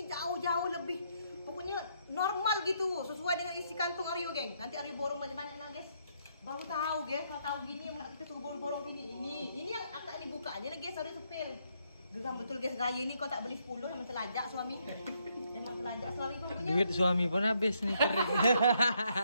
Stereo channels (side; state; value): both; inverted; correlation -0.74